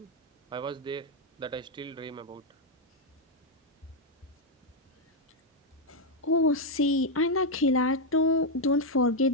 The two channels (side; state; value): both; normal; correlation 0.01